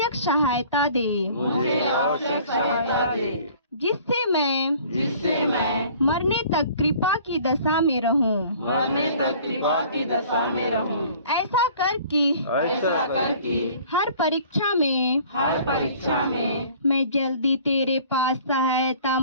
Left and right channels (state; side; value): inverted; both; correlation -0.51